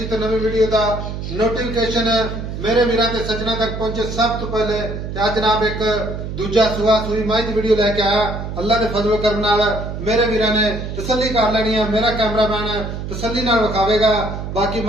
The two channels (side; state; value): right; noise; hum, 6 dB below the sound